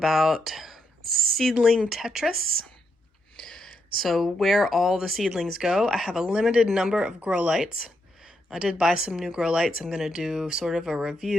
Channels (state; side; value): normal; both; correlation 0.80